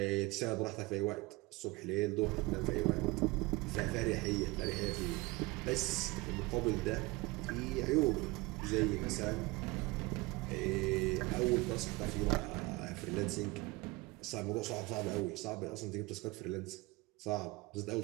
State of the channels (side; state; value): left; quieter; 23.1 dB